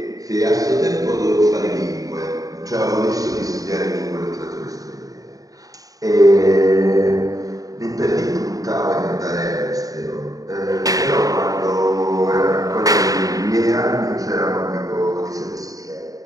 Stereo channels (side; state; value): left; late; 0.17 ms